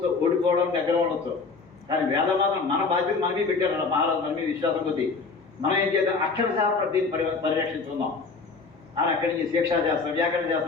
ఓడిపోవడం దగ్గర ఉండొచ్చు, కానీ వేదం మాత్రం మన బాధ్యత మనమే పెట్టారు మహారాజు, మన మీద విశ్వాసం కొద్దీ. మనం ఏం చేద్దాం, అక్షరశః దీన్ని పరిరక్షించుకుందాం అని అక్కడి నుంచి శిక్షాశాస్త్రం, వ్యాకరణ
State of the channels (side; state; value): right; quieter; 4.4 dB